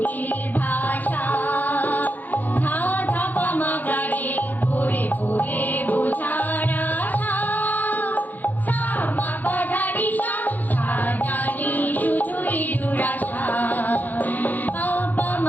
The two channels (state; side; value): late; right; 0.084 ms